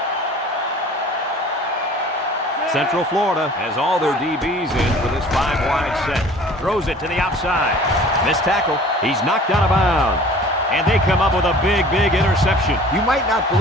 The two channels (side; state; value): both; normal; correlation 0.47